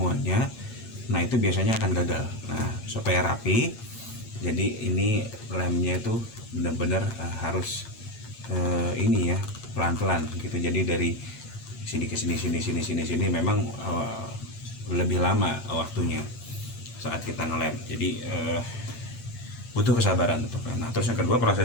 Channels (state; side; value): late; right; 8.7 ms